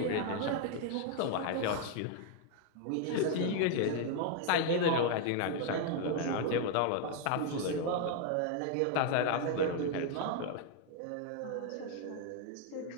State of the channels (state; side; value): different; both; correlation 0.00